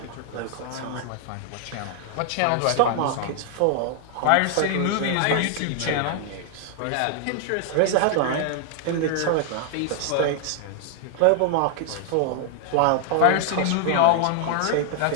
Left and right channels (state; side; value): different; both; correlation 0.00